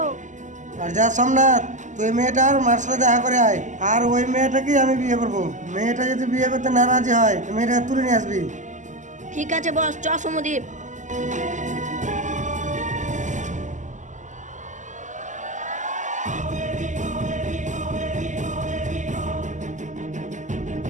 আর যা সোমনাথ, তুই মেয়েটার মার সাথে দেখা করে আয়, আর ওই মেয়েটাকেই আমি বিয়ে করবো। মেয়েটা যদি বিয়ে করতে না রাজি হয়, মেয়েটাকে তুলে নিয়ে আসবি। ঠিক আছে বস, চ সমদীপ।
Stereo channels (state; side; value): late; left; 0.36 ms